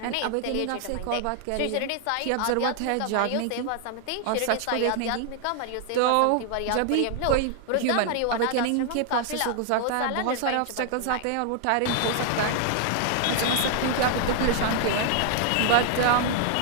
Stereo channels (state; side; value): different; both; correlation 0.00